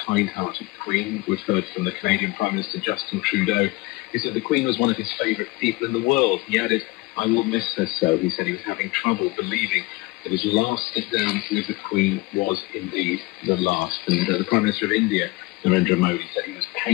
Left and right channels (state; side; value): quieter; right; 22.6 dB